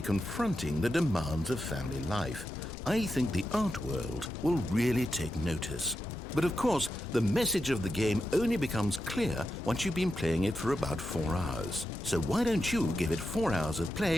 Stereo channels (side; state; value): both; normal; correlation 0.88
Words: the demands of family life. I think the art world will really take notice. But of course, the message of the game only becomes clear once you've been playing it for about 4 hours. So why don't you give it 4 hours of